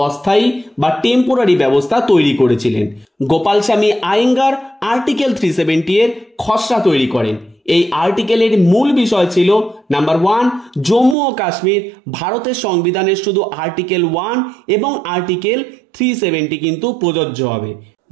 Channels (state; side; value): drops out; left; at 11.2 s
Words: অস্থায়ী বা টেম্পোরারি ব্যবস্থা তৈরি করেছিলেন। গোপাল স্বামী আয়েঙ্গার আর্টিকেল 370 এর খসড়া তৈরি করেন। এই আর্টিকেলের মূল বিষয় ছিল নাম্বার 1, জম্মু ও কাশ্মীর ভারতের সংবিধানের শুধু আর্টিকেল 1 এবং আর্টিকেল 370 কিন্তু প্রযোজ্য হবে।